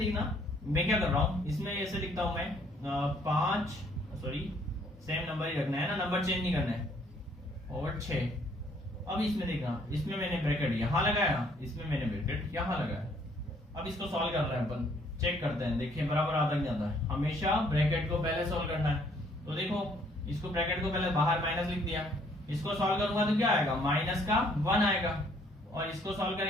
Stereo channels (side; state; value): both; normal; correlation 0.64